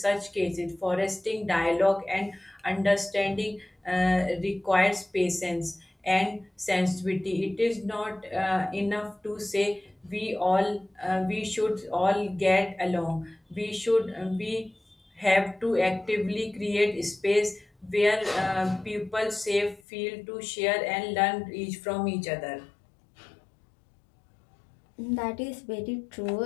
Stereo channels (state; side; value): drops out; right; at 19.8 s